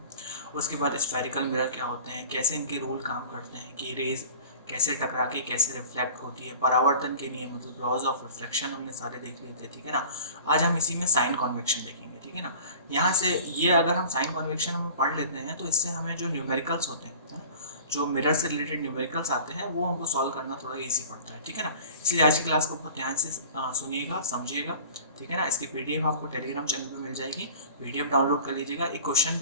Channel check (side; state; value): both; inverted; correlation -0.43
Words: उसके बाद स्फेरिकल मिरर क्या होते हैं, कैसे इनके रूल काम करते हैं कि रेज कैसे टकरा के कैसे रिफ्लेक्ट होती है, परावर्तन के नियम मतलब लॉज ऑफ रिफ्लेक्शन हमने सारे देख लिए थे, ठीक है ना। आज हम इसी में साइन कॉन्वेक्शन देखेंगे, ठीक है ना। यहाँ से ये अगर हम साइन कॉन्वेक्शन हम पढ़ लेते हैं तो इससे हमें जो न्यूमेरिकल्स होते हैं, जो मिरर से रिलेटेड न्यूमेरिकल्स आते हैं वो हमको सॉल्व करना थोड़ा इजी पड़ता है, ठीक है ना। इसलिए आज की क्लास को बहुत ध्यान से सुनिएगा, समझिएगा, ठीक है ना। इसकी पीडीएफ आपको टेलीग्राम चैनल पे मिल जाएगी, पीडीएफ डाउनलोड कर लीजिएगा। एक क्वेश्चन